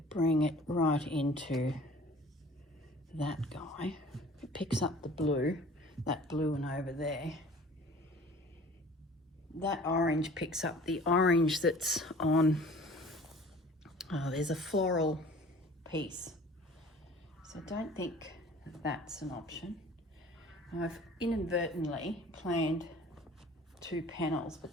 bring it right into that guy. It picks up the blue, that blue one over there. That orange picks up the orange that's on, there's a floral piece. So I don't think that's an option. I've inadvertently planned 2 panels, but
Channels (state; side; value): normal; both; correlation 0.48